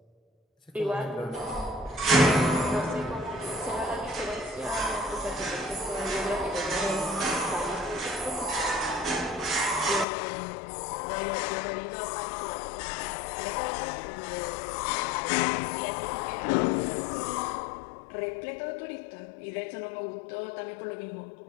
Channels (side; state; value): right; drops out; at 10.1 s